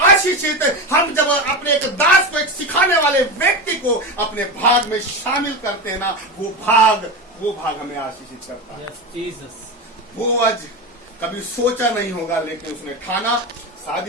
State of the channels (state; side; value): normal; both; correlation 0.19